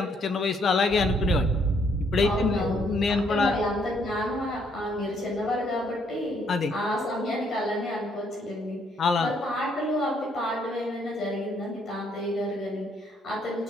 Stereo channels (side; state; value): both; normal; correlation 0.69